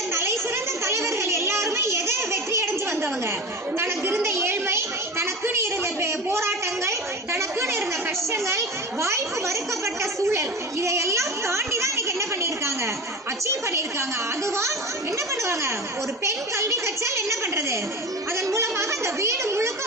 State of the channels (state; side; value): normal; both; correlation 0.31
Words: தலை சிறந்த தலைவர்கள் எல்லாருமே எதை வெற்றி அடைஞ்சு வந்தவங்க? தனக்கு இருந்த ஏழ்மை, தனக்குன்னு இருந்த போராட்டங்கள், தனக்குன்னு இருந்த கஷ்டங்கள், வாய்ப்பு மறுக்கப்பட்ட சூழல், இதையெல்லாம் தாண்டி தான் இன்னைக்கு என்ன பண்ணிருக்காங்க? அச்சீவ் பண்ணிருக்காங்க. அதுவா என்ன பண்ணுவாங்க? ஒரு பெண் கல்வி கற்றால் என்ன பண்றது? அதன் மூலமாக அந்த வீடு முழுக்க